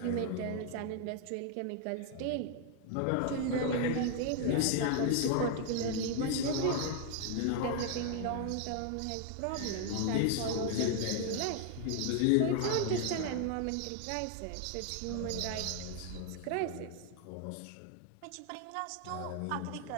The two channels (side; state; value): both; different; correlation 0.00